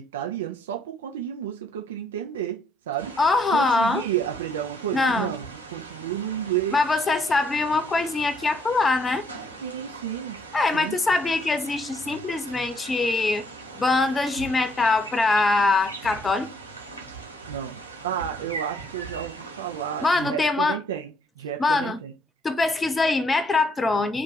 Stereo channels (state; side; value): normal; both; correlation 0.68